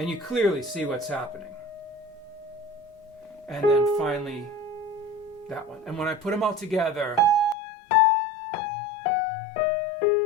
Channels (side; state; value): right; drops out; at 7.6 s